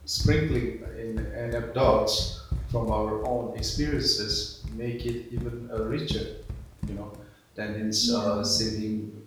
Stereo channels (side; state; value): both; identical; correlation 1.00